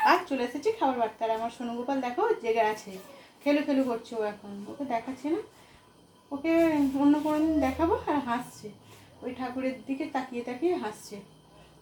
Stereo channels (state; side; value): identical; both; correlation 1.00